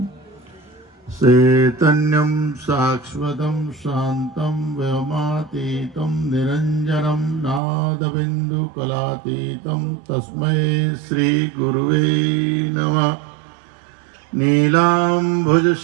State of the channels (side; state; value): left; drops out; at 7.6 s